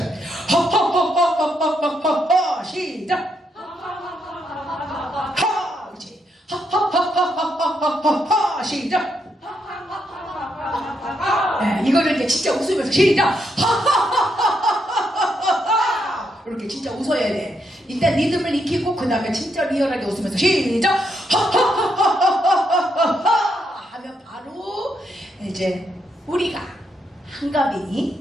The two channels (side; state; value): both; normal; correlation 0.78